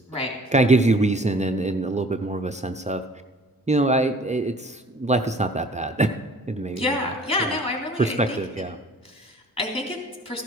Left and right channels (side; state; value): both; normal; correlation 0.51